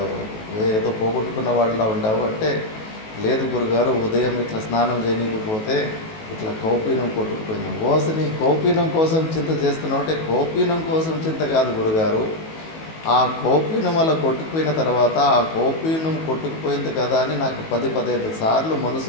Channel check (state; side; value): late; right; 19 ms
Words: ఏదో పోగొట్టుకున్న వాడిలా ఉండావు అంటే, లేదు గురుగారు, ఉదయం ఇట్లా స్నానం చేయనీకపోతే ఇట్లా కౌపీనం కొట్టుకుపోయింది. ఓసని కౌపీనం కోసం చింత చేస్తున్నావు అంటే, కౌపీనం కోసం చింత కాదు గురుగారు, ఆ కౌపీనం అలా కొట్టుకుపోయిన తర్వాత ఆ కౌపీనం కొట్టుకుపోయింది కదా అని నాకు 10-15 సార్లు